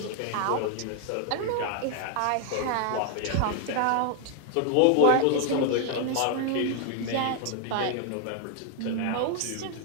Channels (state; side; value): different; both; correlation 0.00